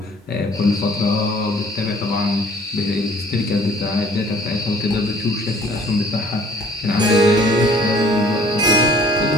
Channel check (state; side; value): normal; both; correlation 0.54